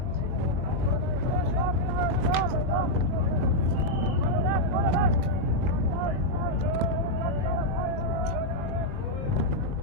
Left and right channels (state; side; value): late; left; 21 ms